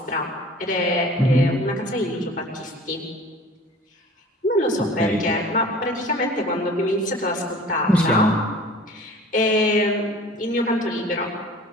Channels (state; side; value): normal; both; correlation 0.45